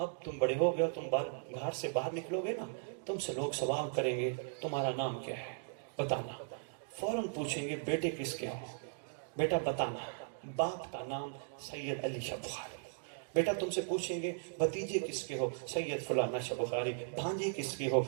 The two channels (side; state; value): left; silent; digital silence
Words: تم بڑے ہو گئے، تم گھر سے باہر نکلو گے نا، تم سے لوگ سوال کریں گے تمہارا نام کیا ہے، بتانا۔ فوراً پوچھیں گے بیٹے کس کے ہو، بیٹا بتانا۔ باپ کا نام سید علی شاہ بخاری۔ بیٹا تم سے پوچھیں گے بھتیجے کس کے ہو، سید فلانا شاہ بخاری۔ بھانجے کس کے ہو،